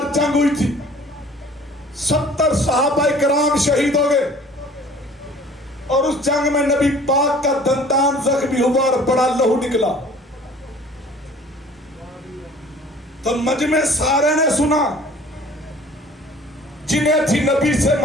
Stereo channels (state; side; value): normal; both; correlation 0.49